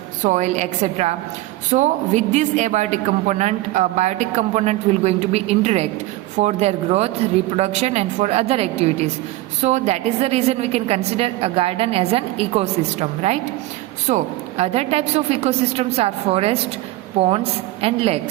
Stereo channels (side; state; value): left; quieter; 17.6 dB